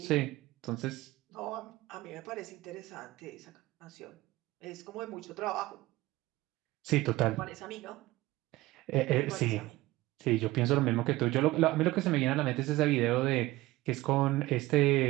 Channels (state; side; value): quieter; left; 18.4 dB